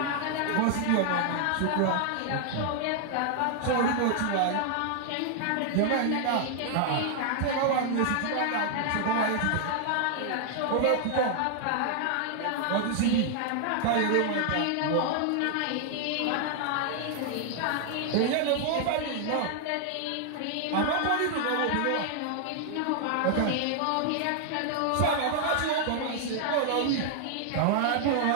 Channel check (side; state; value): both; different; correlation 0.00